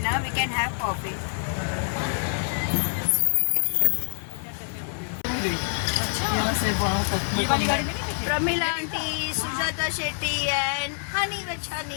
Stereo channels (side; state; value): right; silent; 61 dB below the other